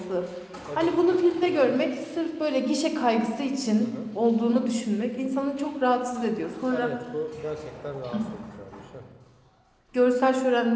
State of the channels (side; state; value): both; identical; correlation 1.00